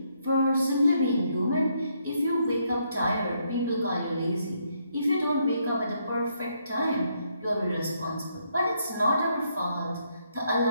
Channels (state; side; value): inverted; both; correlation -0.75